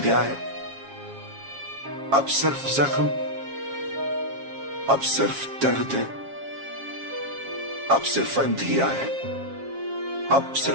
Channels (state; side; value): late; left; 7.4 ms